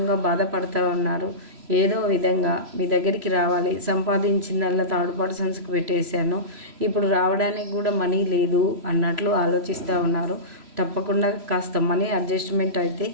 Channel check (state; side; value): late; left; 3.0 ms